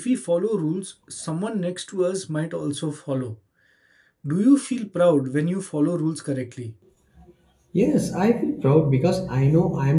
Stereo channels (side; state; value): both; identical; correlation 1.00